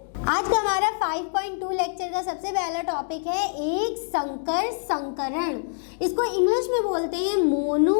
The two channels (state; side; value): silent; right; digital silence